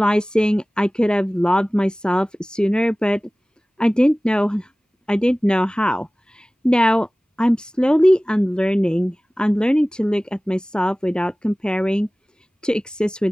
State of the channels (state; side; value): normal; both; correlation 0.98